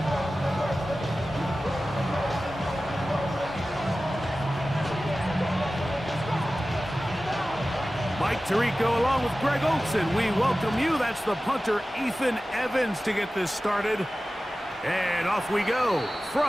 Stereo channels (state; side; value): normal; both; correlation 0.96